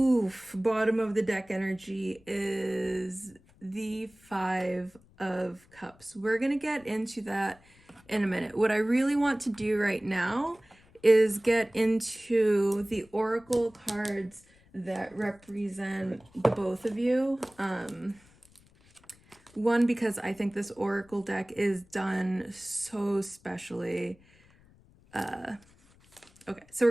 bottom of the deck energy is the Five of Cups. We're gonna get into that in a minute. What I really want to do right now is get into the oracle cards that represent the both of you. One, because I think this oracle deck is done so specially. Okay, so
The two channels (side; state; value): left; noise; rumble, 29 dB below the sound